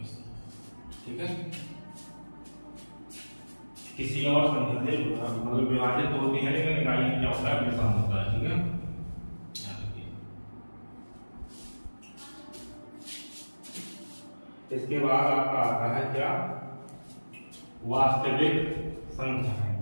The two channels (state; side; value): inverted; both; correlation -1.00